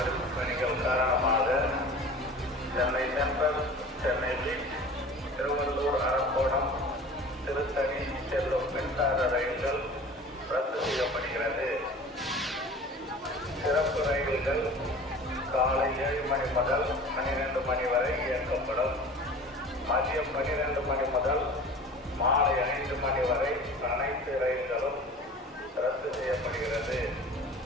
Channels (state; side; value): normal; both; correlation 0.41